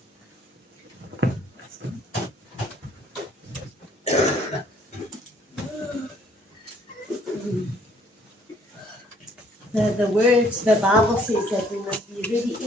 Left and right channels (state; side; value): normal; both; correlation 0.62